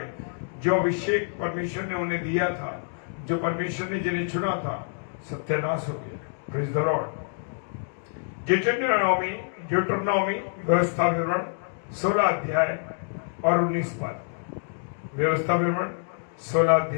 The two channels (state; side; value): silent; right; digital silence